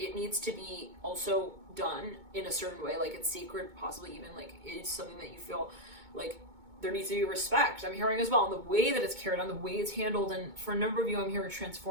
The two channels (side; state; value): left; late; 2.2 ms